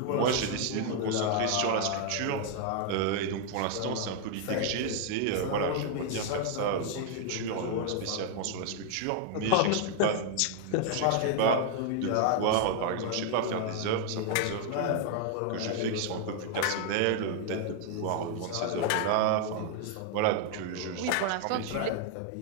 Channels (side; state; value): both; different; correlation 0.00